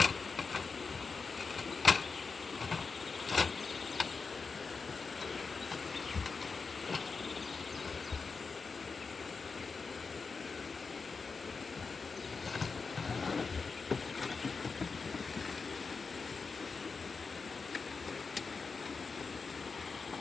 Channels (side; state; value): right; quieter; 4.7 dB